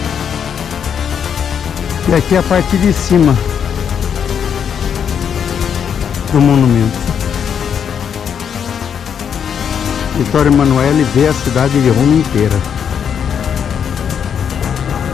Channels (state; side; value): quieter; right; 7.8 dB